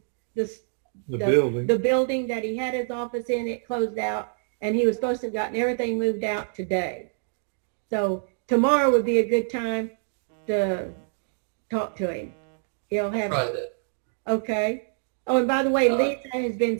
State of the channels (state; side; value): silent; left; digital silence